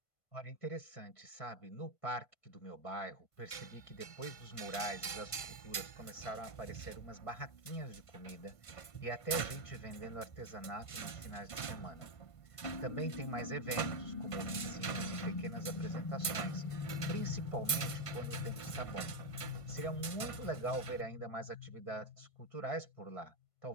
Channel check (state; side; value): late; right; 1.5 ms